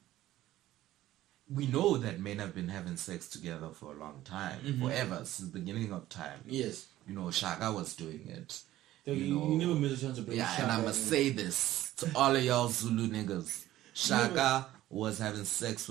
We know that men have been having sex together for a long time, forever, since the beginning of time. Yes. You know, Saga was doing it. You never miss a chance to bring Yeah, Shaka and I must say this to all of y'all Zulu niggas. Shaka was having sex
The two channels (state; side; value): quieter; left; 14.6 dB